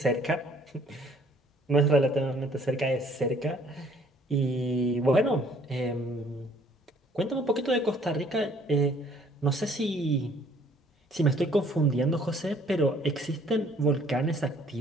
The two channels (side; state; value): both; normal; correlation 0.59